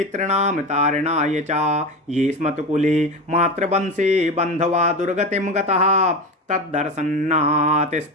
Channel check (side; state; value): both; normal; correlation 0.23